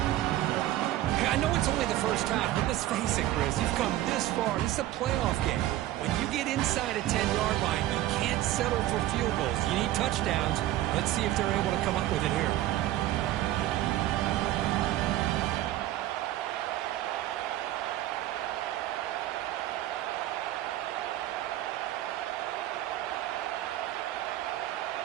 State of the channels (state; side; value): quieter; left; 14.5 dB